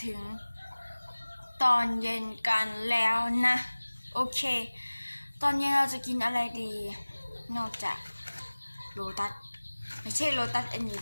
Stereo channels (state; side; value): inverted; both; correlation -1.00